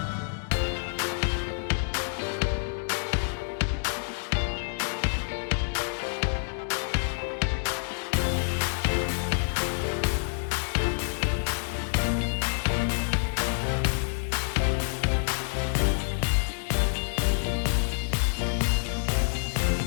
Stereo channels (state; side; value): silent; right; digital silence